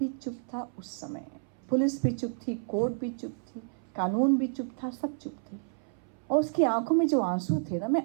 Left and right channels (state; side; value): silent; left; 57 dB below the other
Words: चुप था उस समय, पुलिस भी चुप थी, कोर्ट भी चुप थी, कानून भी चुप था, सब चुप थे. और उसकी आंखों में जो आंसू थे ना,